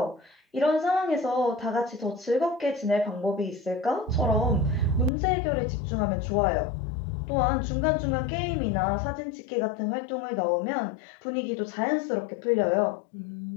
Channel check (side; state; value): right; drops out; at 5.1 s